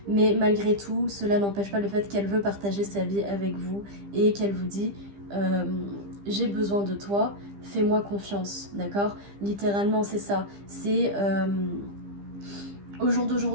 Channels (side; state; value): left; late; 15 ms